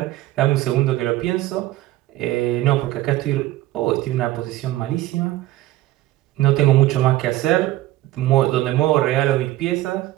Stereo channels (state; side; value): quieter; left; 16.3 dB